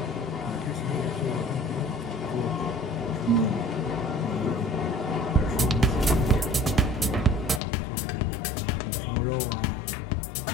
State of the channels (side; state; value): right; drops out; at 7.6 s